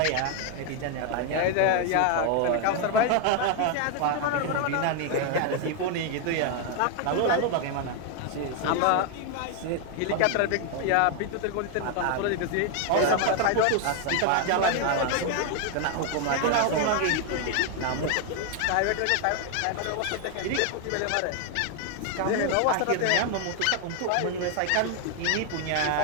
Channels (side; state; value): both; different; correlation 0.01